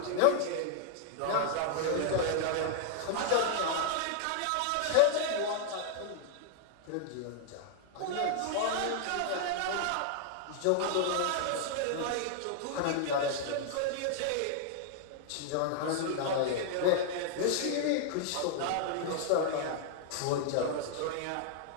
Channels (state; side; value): different; both; correlation 0.00